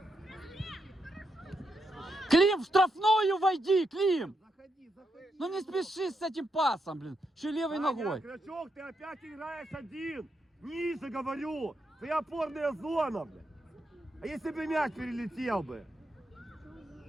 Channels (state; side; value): normal; both; correlation 0.82